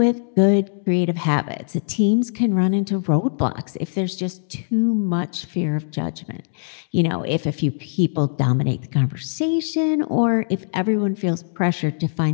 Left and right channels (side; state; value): right; silent; digital silence